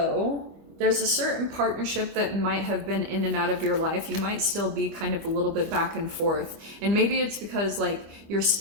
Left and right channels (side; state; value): left; late; 25 ms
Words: there's a certain partnership that might have been in and out of your life. You might still be kind of a little bit back and forth. And maybe it's because like you're